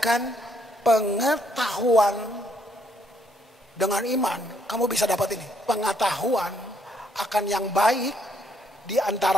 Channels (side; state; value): both; normal; correlation 0.71